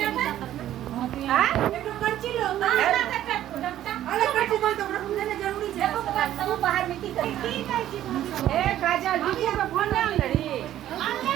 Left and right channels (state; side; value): quieter; left; 12.4 dB